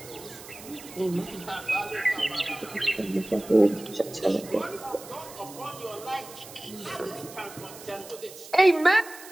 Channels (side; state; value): right; noise; hiss, 16 dB below the sound